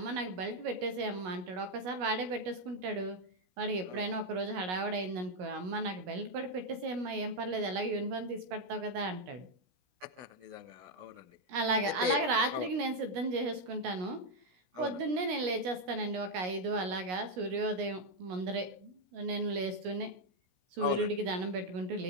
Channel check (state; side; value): late; left; 16 ms